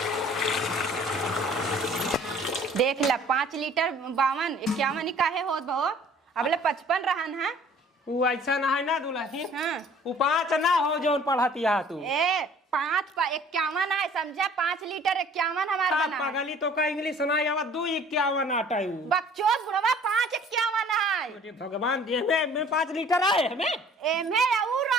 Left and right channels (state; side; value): normal; both; correlation 0.52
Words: देख ला 5 लीटर 52 51 काहे होत भो, अबले 55 रहन है। वो ऐसा ना है ना दुल्हन। हां वो 5 ना हो जो पढ़ती है तू। ए 5 पा 51 है समझा, 5 लीटर 51 हमार सात बना। पागली तो का इंग्लिश सुनाई आवा 251 आटा है। बकचोद बुढ़वा 5 51 है। अरे भगवान दे में 5 लीटर आए हमें। एमे और